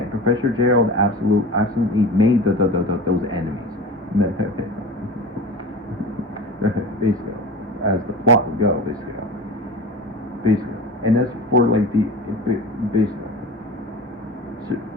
Professor Gerald absolutely made those enemies. Basically, as the plot would go, basically. And as for like the basically,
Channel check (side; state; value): both; normal; correlation 0.33